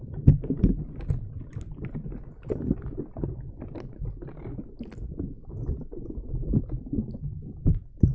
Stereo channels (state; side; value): identical; both; correlation 1.00